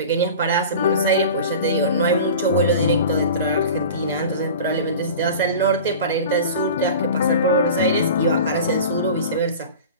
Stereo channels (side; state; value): both; inverted; correlation -0.36